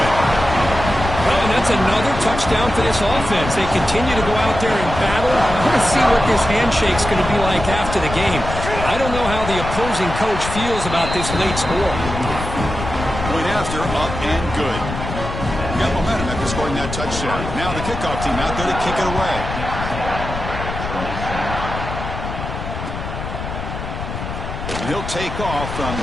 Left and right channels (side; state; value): left; noise; rumble, 7 dB below the sound